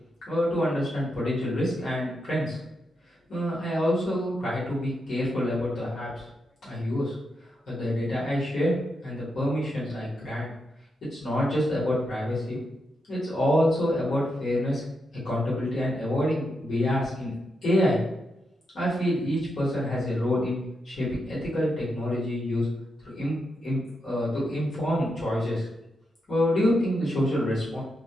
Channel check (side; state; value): both; normal; correlation 0.84